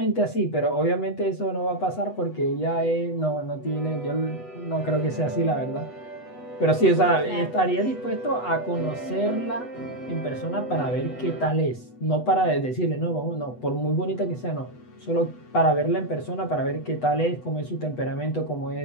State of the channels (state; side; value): late; right; 8.1 ms